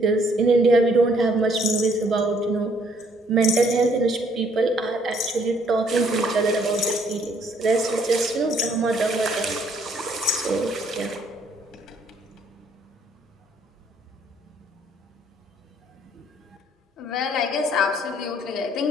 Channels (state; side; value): normal; both; correlation 0.65